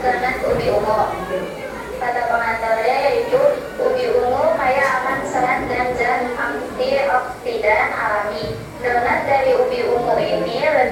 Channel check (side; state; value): both; identical; correlation 1.00